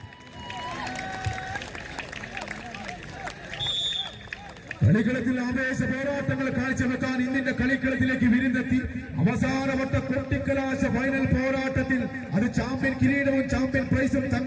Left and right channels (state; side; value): identical; both; correlation 1.00